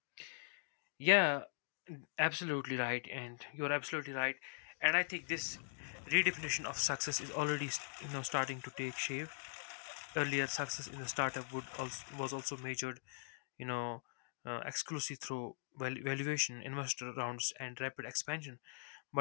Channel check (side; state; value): right; silent; digital silence